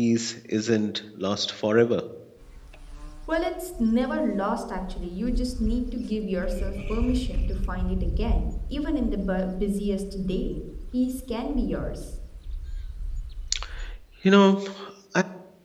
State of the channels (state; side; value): identical; both; correlation 1.00